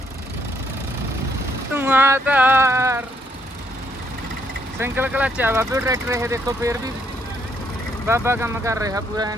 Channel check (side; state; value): both; normal; correlation 0.72